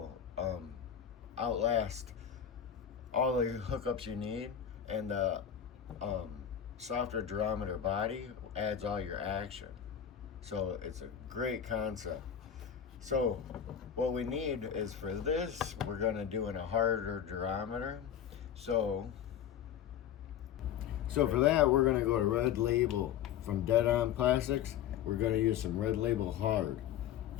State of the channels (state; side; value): quieter; right; 9.1 dB